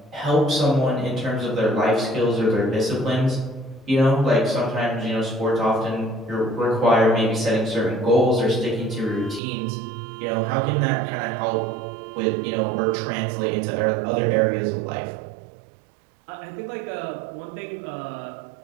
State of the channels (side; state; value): left; drops out; at 9.4 s